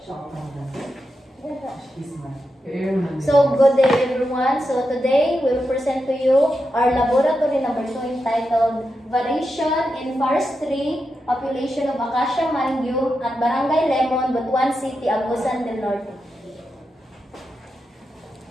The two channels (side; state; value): both; normal; correlation 0.87